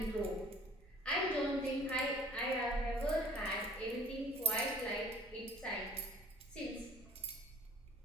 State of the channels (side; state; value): both; normal; correlation 0.50